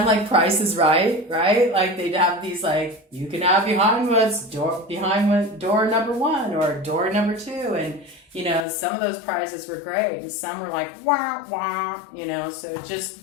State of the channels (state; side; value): drops out; right; at 8.7 s